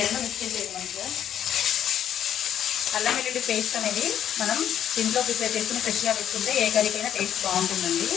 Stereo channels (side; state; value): right; quieter; 10.0 dB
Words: రెండు మిక్స్ చేసేది మంచిగా. అల్లం వెల్లుల్లి పేస్ట్ అనేది మనం ఇంట్లో ప్రిపేర్ చేసుకుని ఫ్రెష్గా వేసుకుంటే ఏ కర్రీకైనా టేస్ట్ బాగుంటుందండి.